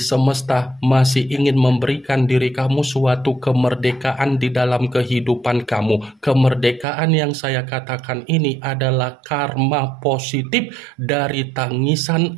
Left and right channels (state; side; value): drops out; left; at 6.9 s